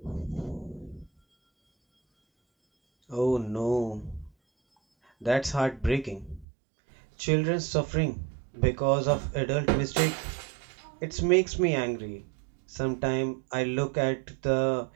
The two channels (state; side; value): drops out; left; at 6.5 s